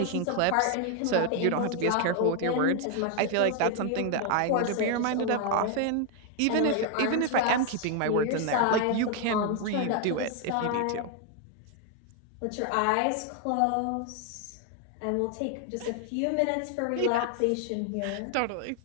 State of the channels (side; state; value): both; different; correlation 0.01